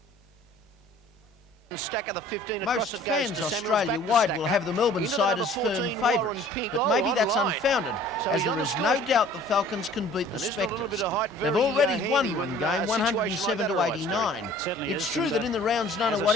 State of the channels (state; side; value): normal; both; correlation 0.51